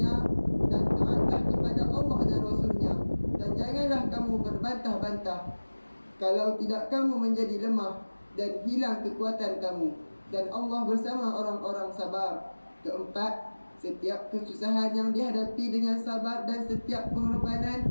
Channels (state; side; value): inverted; both; correlation -1.00